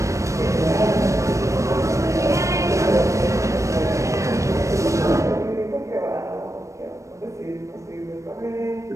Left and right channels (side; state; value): left; late; 0.15 ms